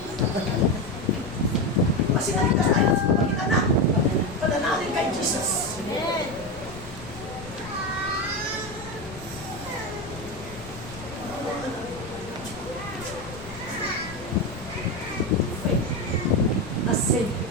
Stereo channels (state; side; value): noise; left; rumble, 15 dB below the sound